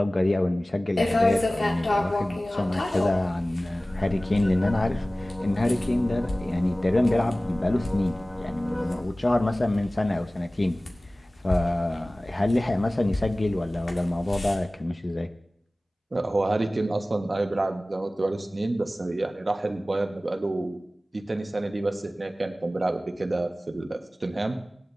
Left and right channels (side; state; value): both; normal; correlation 0.97